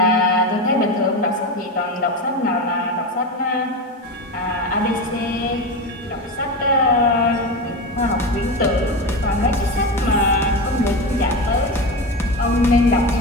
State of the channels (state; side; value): normal; both; correlation 0.21